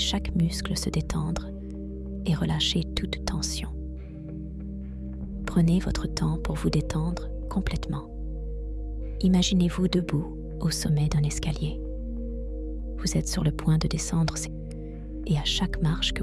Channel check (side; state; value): both; identical; correlation 1.00